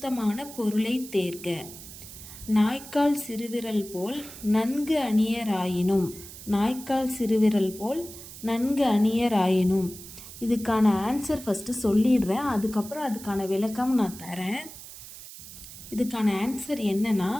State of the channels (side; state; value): right; noise; hiss, 15 dB below the sound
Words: பொருளை தேர்க. நாய்க்கால் சிறுவிரல் போல் நன்கு அணியராயினும். நாய்க்கால் சிறுவிரல் போல் நன்கு அணியராயினும். இதுக்கான ஆன்சர் ஃபஸ்ட்டு சொல்லிடுறேன், அதுக்கப்புறம் அதுக்கான விளக்கம் நான் தரேன். இதுக்கான ஆன்சர் என்னன்னா